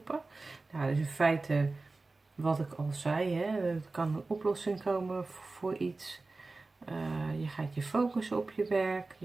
Nou, dus in feite wat ik al zei, hè, er kan een oplossing komen voor iets. Je gaat je focussen op je werk.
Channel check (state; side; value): quieter; left; 3.5 dB